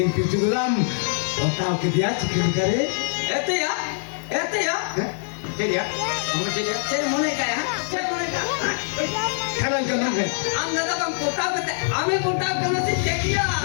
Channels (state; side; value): silent; right; digital silence